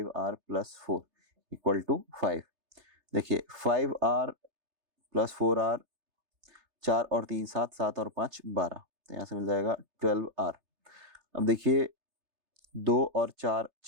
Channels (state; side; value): late; left; 3.3 ms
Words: plus four equal to 5। देखिए 5r प्लस 4r 4 और 3 7, 7 और 5 12, तो यहाँ से मिल जाएगा 12R। अब देखिए 2 और 4